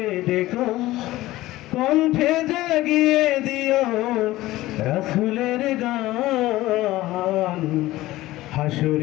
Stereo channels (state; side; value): quieter; right; 17.0 dB